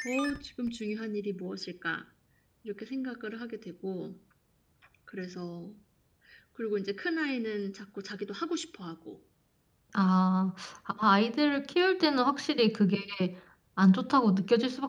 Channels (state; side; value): identical; both; correlation 1.00